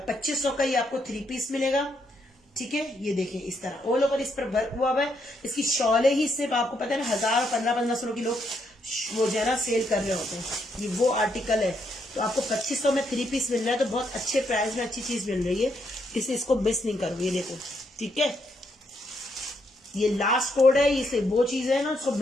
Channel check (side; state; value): both; normal; correlation 0.76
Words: 2500 का ये आपको 3 पीस मिलेगा, ठीक है। ये देखें इस तरह ऑल ओवर इस पर वर्क हुआ है। इसकी शॉले ही सिर्फ आपको पता है ना 1000 1500 की लोग वो जो है ना सेल कर रहे होते हैं। ये वो आर्टिकल है, तो आपको 2500 में 3 पीस मिल रहा है, तो बहुत अच्छे प्राइस में अच्छी चीज मिल रही है, इसलिए इसको मिस नहीं करो। ये देखो, ठीक है, ये लास्ट कोड है, इसे वो चीज है ना उसको